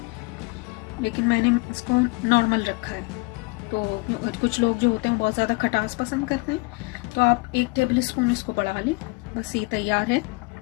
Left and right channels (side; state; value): right; quieter; 26.4 dB